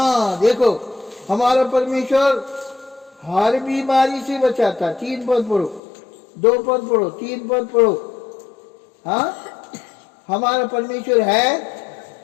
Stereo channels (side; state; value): right; drops out; at 5.8 s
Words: देखो हमारा परमेश्वर हर बीमारी से बचाता। 3 पद पढ़ो, 2 पद पढ़ो, 3 पद पढ़ो। हाँ हमारा परमेश्वर है,